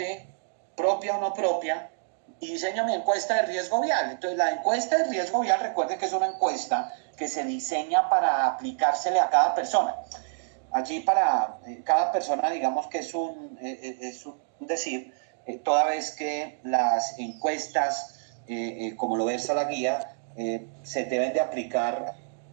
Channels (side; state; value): left; silent; digital silence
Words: propia o no propia, y diseño mi encuesta de riesgo vial. Entonces la encuesta de riesgo vial, recuerden que es una encuesta que se diseña para aplicársele a cada persona. Allí para cada persona, digamos que es un decir, toda vez que las encuestas, como lo versa la guía, se deben de aplicar